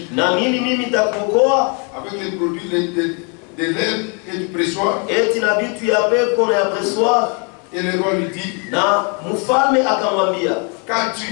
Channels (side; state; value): right; quieter; 36.2 dB